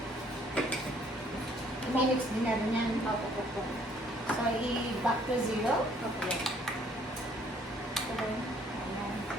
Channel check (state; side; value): normal; both; correlation 0.62